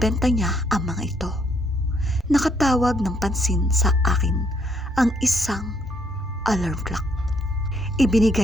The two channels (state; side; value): normal; both; correlation 0.71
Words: niya ang mga ito. Nakatawag ng pansin sa akin ang isang alarm clock.